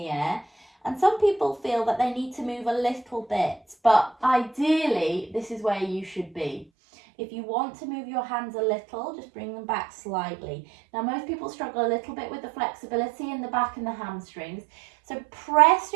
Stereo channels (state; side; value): drops out; left; at 6.7 s